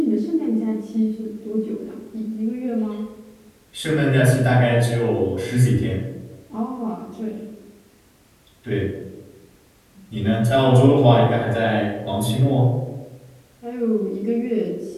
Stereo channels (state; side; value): identical; both; correlation 1.00